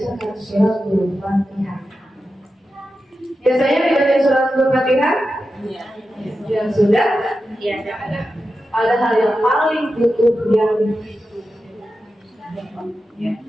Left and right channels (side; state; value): both; normal; correlation 0.91